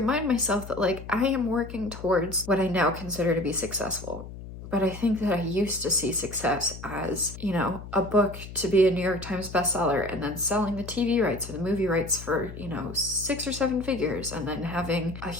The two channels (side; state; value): left; noise; hum, 12 dB below the sound